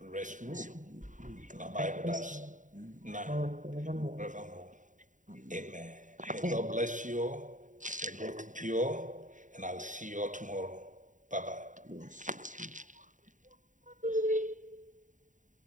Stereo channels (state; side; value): late; left; 0.37 ms